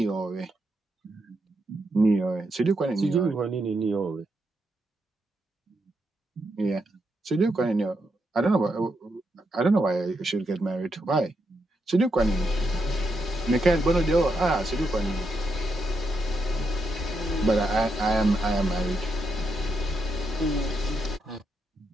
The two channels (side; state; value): both; normal; correlation 0.82